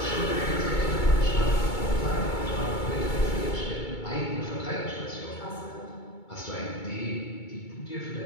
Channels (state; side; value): late; right; 2.2 ms